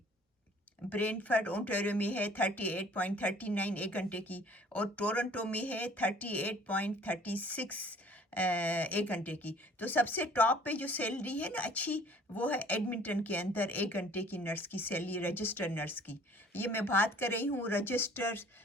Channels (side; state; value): both; normal; correlation 0.53